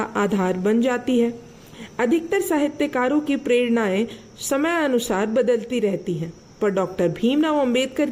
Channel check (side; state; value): both; identical; correlation 1.00